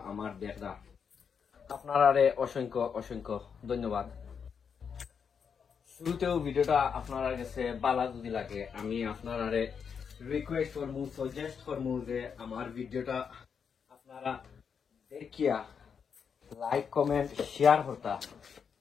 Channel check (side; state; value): right; quieter; 6.7 dB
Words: আমার দেখরা, আপনারারে অসংখ্য অসংখ্য ধন্যবাদ। শুরুতেও ভিডিওটা আপনারা কাছে ভালো যদি লাগে আমি আপনারারে রিকোয়েস্ট করমু, সাজেস্ট করমু যে আমার ভিডিওটা আপনারা দেখিয়া লাইক কমেন্ট শেয়ার করতা।